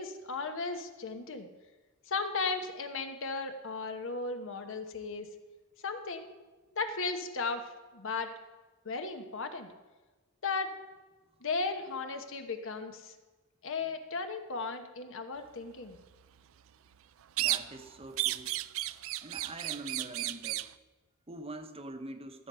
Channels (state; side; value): normal; both; correlation -0.13